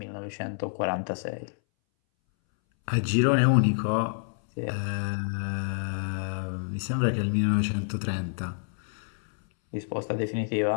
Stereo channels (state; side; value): silent; right; 59 dB below the other